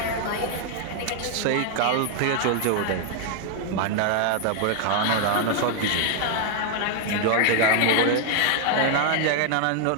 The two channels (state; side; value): different; both; correlation 0.00